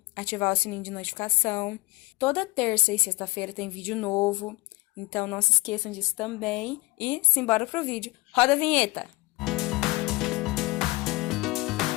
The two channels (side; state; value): right; quieter; 23.2 dB